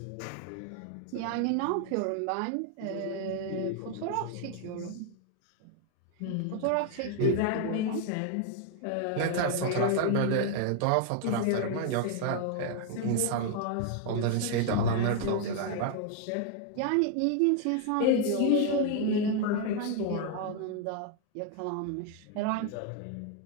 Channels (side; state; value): both; different; correlation 0.00